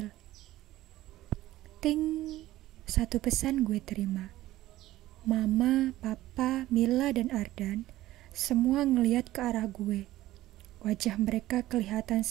Ting, satu pesan gue terima. Mama, Papa, Mila, dan Ardan semua ngeliat ke arah gue. Wajah mereka kelihatan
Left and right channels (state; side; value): quieter; left; 15.6 dB